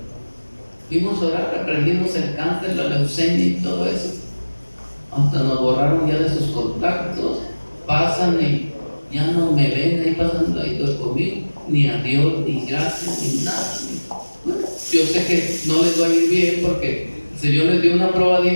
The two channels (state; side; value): inverted; both; correlation -1.00